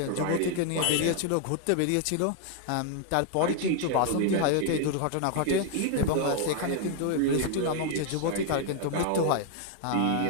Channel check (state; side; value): different; both; correlation 0.00